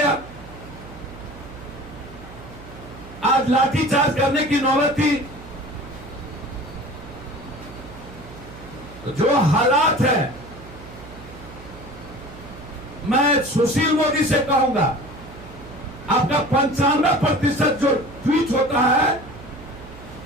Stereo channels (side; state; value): right; noise; hum, 16 dB below the sound